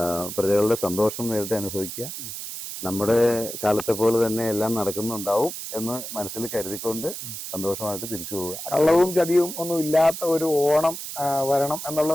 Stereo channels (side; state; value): right; noise; hiss, 8 dB below the sound